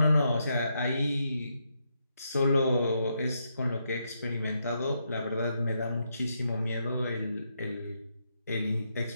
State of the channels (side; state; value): both; inverted; correlation -0.80